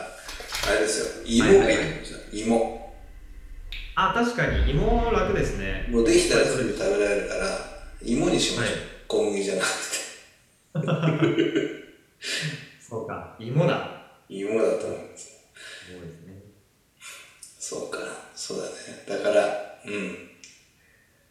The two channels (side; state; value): both; identical; correlation 1.00